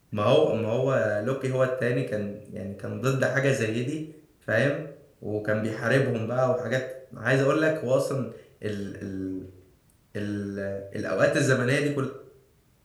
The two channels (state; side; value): identical; both; correlation 1.00